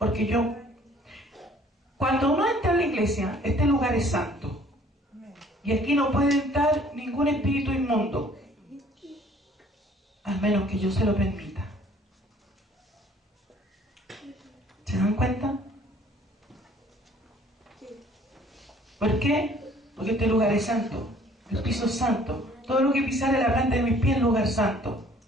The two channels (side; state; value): both; normal; correlation 0.56